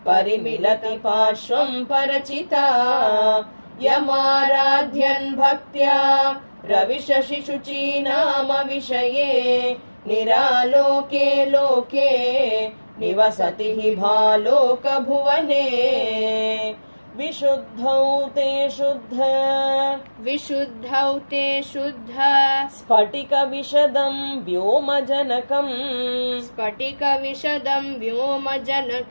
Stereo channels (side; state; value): both; inverted; correlation -1.00